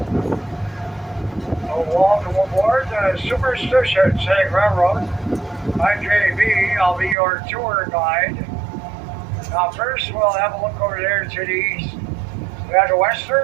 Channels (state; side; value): drops out; left; at 7.2 s